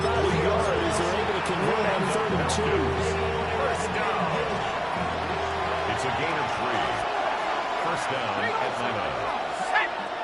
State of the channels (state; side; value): identical; both; correlation 1.00